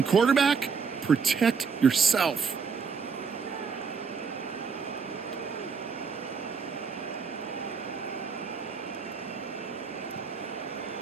quarterback, protect yourself.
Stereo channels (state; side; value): quieter; left; 5.7 dB